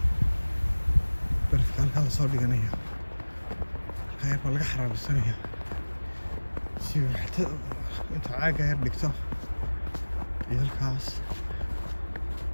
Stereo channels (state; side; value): inverted; both; correlation -1.00